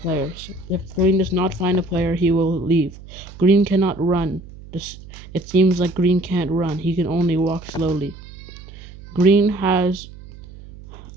If Green does not find a player, he will leave. Green cannot run. It seems like Green can't run. He can only walk slowly. Green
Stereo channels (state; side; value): noise; right; hum, 17 dB below the sound